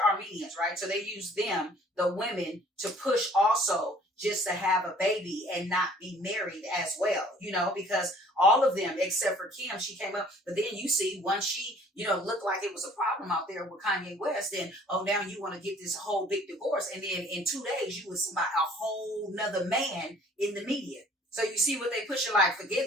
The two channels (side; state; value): both; normal; correlation 0.54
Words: Armenians, right? So they use them, the women, to push also just to have a baby and not be married as well, you know, because all of them, except for Kim, she came up. But then you see, once she, you know, looked like it was a problem out there with Kanye West, then, now you want to get this whole big divorce. And then in 2 days, you was somebody, a whole nother man in the media. So you see what they pushing, like,